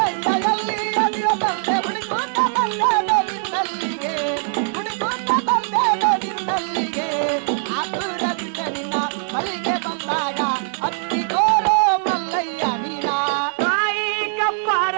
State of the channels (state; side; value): silent; left; digital silence